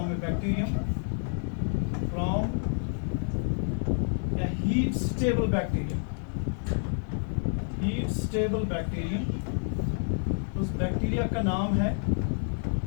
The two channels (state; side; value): silent; right; 59 dB below the other